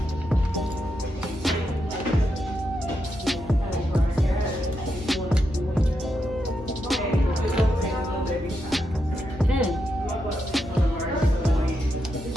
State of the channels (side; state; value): both; normal; correlation 0.84